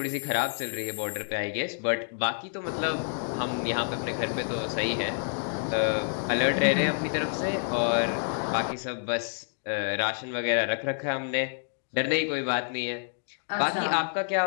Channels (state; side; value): silent; right; digital silence